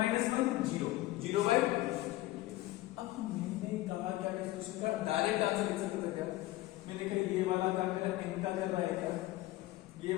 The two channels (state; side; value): quieter; right; 17.2 dB